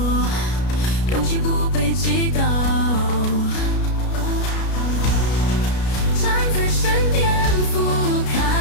勇气不被击倒，站在山巅俯瞰，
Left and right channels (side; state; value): right; late; 33 ms